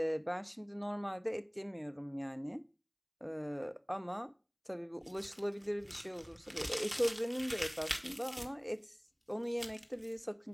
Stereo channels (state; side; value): identical; both; correlation 1.00